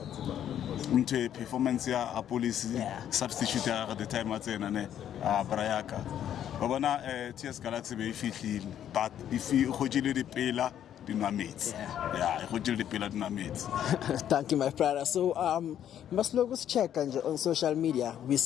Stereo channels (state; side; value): quieter; right; 10.3 dB